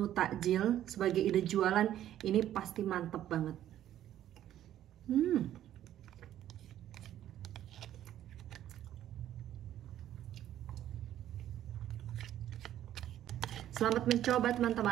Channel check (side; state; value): left; quieter; 11.9 dB